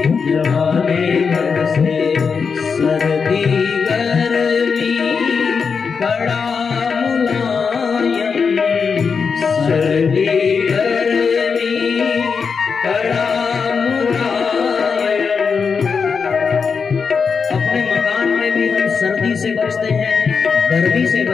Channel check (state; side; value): quieter; right; 5.6 dB